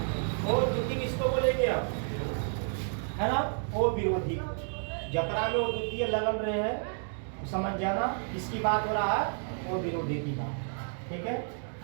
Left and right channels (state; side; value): silent; left; 56 dB below the other